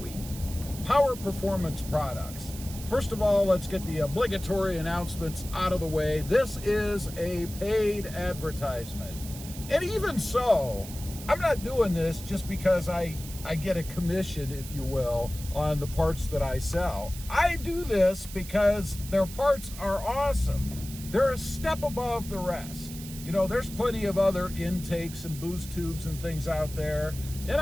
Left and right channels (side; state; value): right; noise; hiss, 13 dB below the sound